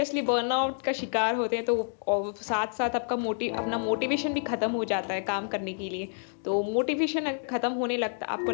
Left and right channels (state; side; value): silent; right; digital silence